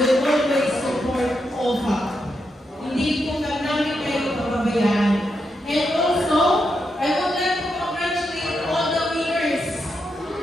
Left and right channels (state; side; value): normal; both; correlation 0.84